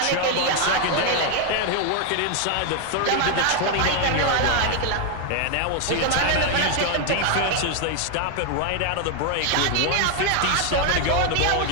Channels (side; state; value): both; different; correlation 0.01